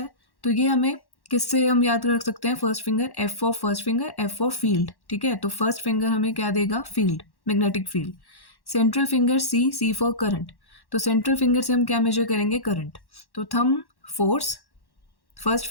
तो ये हमें किससे हम याद रख सकते हैं, first finger, F for first finger, F for field, ठीक है। तो फर्स्ट फिंगर हमें क्या देगा, field, magnetic field. Central finger C, C for current. तो सेंट्रल फिंगर से हम क्या मेजर करेंगे, करंट। तो thumb force, first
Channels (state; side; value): late; right; 1.1 ms